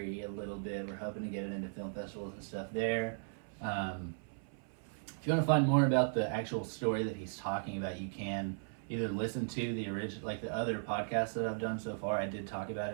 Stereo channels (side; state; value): left; silent; 53 dB below the other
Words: a little bit. We're hoping to get it into film festivals and stuff there. If you want to find more about the actual story that he's talking about, you can either listen to the original, like the other podcasts that I've done so far. I did talk about